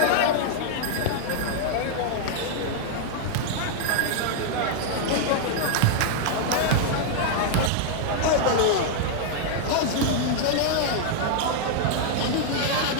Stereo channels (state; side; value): different; both; correlation 0.00